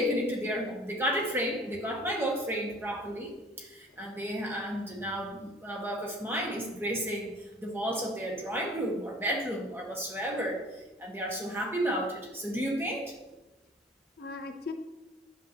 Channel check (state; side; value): normal; both; correlation 0.49